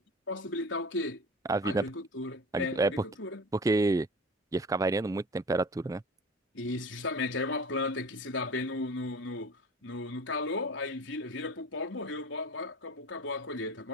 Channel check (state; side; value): normal; both; correlation 0.39